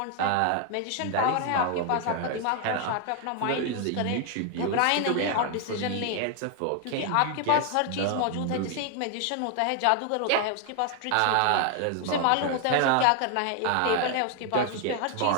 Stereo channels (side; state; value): both; different; correlation 0.00